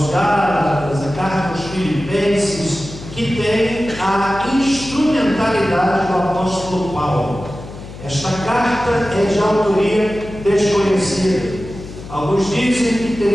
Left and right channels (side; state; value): left; noise; hum, 14 dB below the sound